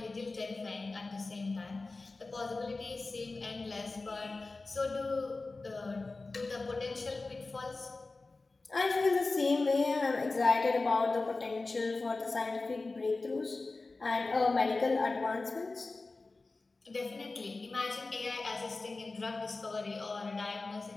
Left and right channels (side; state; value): right; quieter; 3.5 dB